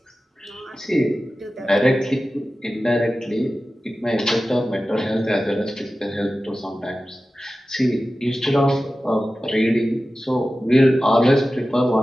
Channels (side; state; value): both; normal; correlation 0.95